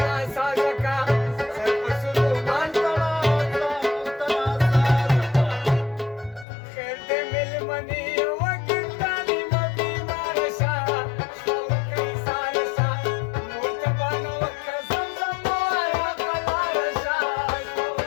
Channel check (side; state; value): right; drops out; at 6.5 s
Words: ناسازه کا سر په سر رومال تړه ځان ورته ناسازه کا خیر دې مېلمنې وکړ تعلیم بیماره شه شپه وکړئ ساره شه مور ته بانه وکړه زمزم ووایه قلاره شه شپه